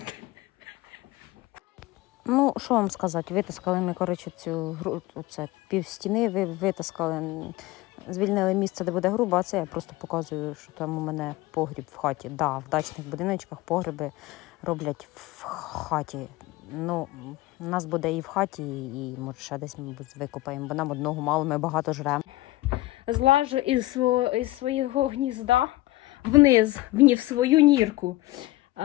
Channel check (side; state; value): right; quieter; 18.1 dB